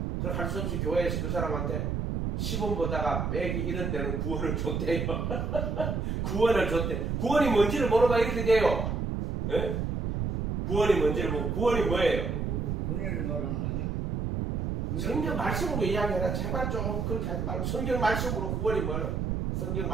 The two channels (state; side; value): noise; right; rumble, 1 dB below the sound